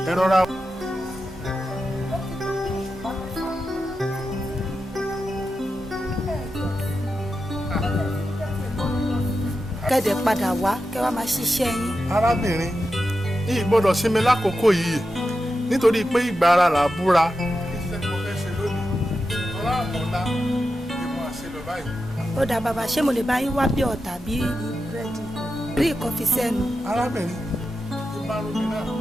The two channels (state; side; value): normal; both; correlation 0.90